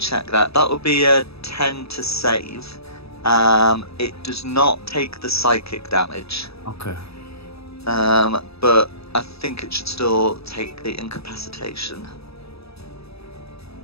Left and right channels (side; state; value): right; late; 0.78 ms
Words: that, that would be a 10 to save. It does not take the psychic damage. Okay. But I think it should still take the incapacitation.